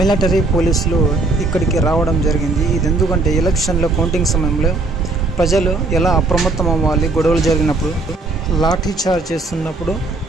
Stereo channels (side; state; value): left; quieter; 3.3 dB